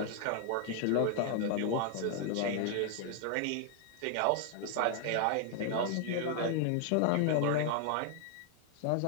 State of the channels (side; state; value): both; different; correlation 0.00